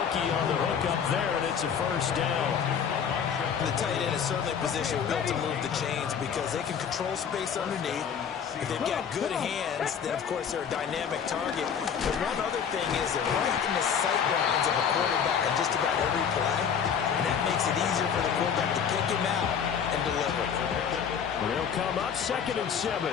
on the hook up there, and it's a 1st down. The tight end is certainly a position built to move the chains because they can control space underneath. If they've got good hands, then, of course, they're a dynamic target. But one other thing is they're right in the sight lines of a quarterback on just about every play, and that makes it easier for the quarterback to pick him out and deliver. They'll come up 2nd and 7.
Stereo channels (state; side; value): quieter; right; 7.4 dB